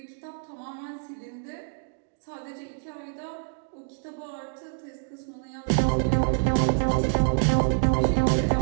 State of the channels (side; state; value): left; silent; digital silence